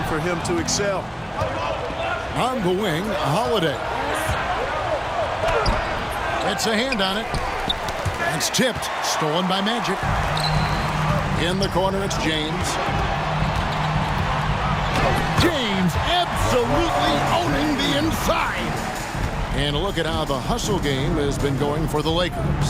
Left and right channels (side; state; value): both; identical; correlation 1.00